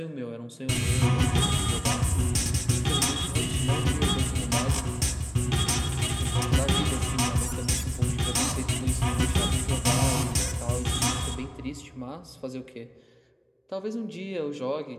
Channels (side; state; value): both; identical; correlation 1.00